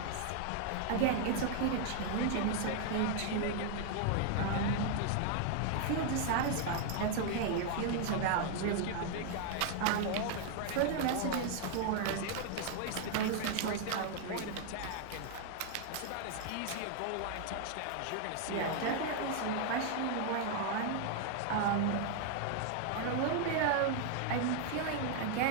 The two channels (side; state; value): both; different; correlation 0.00